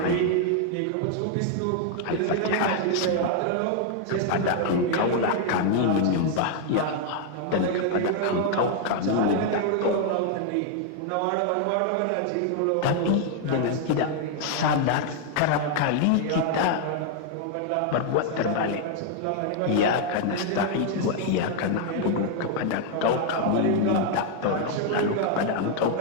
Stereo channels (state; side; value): different; both; correlation 0.00